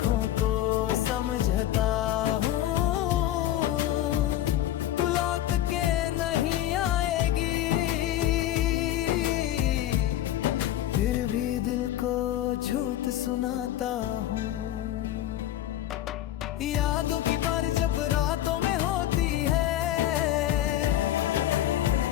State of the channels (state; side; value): quieter; right; 12.8 dB